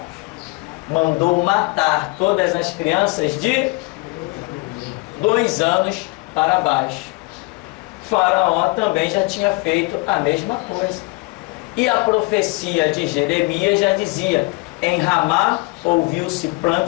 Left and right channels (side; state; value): right; quieter; 25.7 dB